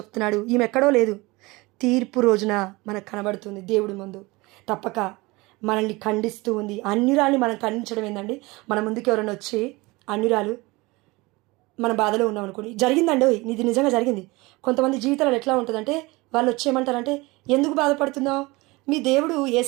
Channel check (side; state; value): left; quieter; 23.1 dB